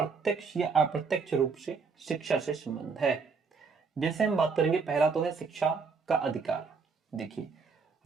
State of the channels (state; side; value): quieter; left; 5.1 dB